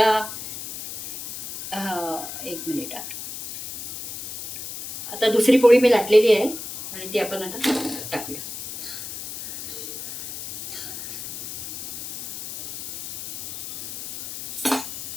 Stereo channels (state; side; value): noise; left; hiss, 8 dB below the sound